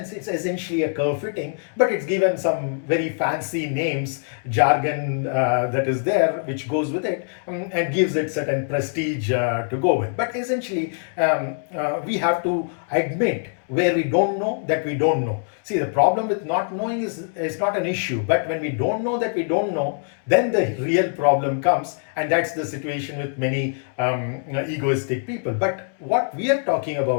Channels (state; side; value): silent; right; 63 dB below the other